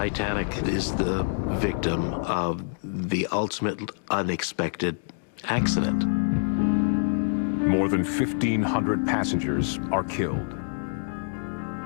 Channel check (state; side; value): silent; right; digital silence